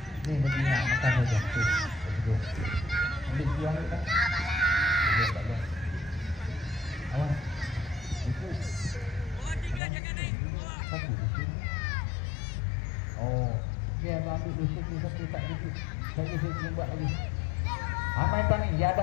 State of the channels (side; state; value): right; drops out; at 9.8 s